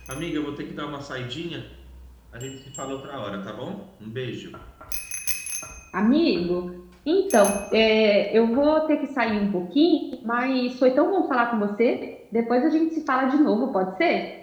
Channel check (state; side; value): identical; both; correlation 1.00